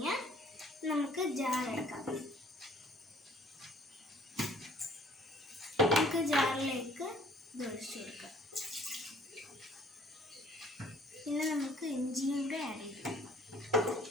നമുക്ക് ജാറെടുക്കാം. നമുക്ക് ജാറിലേക്ക് ഇത് ഒഴിച്ചു കൊടുക്കാം. പിന്നെ നമുക്ക് ഇഞ്ചിയും കൂടെ ആഡ് ചെയ്ത് കൊടുക്കാം.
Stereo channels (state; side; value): normal; both; correlation 0.57